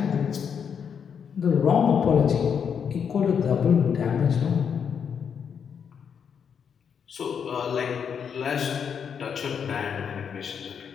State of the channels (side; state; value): right; quieter; 7.2 dB